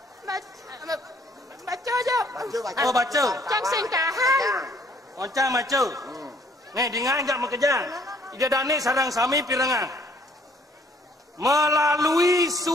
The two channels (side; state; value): both; normal; correlation 0.62